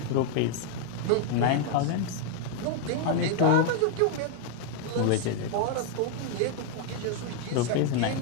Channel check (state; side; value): different; both; correlation 0.00